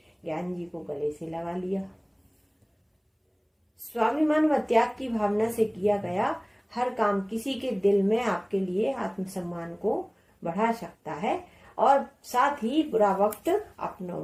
ज्ञान जी को गले से लगा लिया। स्वाभिमान व त्याग की भावना से किया गया हर काम किसी के दिल में आपके लिए आत्मसम्मान को बढ़ा सकता है और साथ ही बुरा वक्त अपनों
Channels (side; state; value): both; identical; correlation 1.00